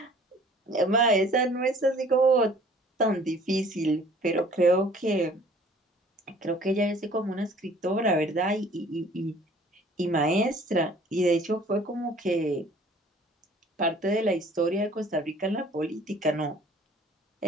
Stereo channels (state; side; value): normal; both; correlation 0.53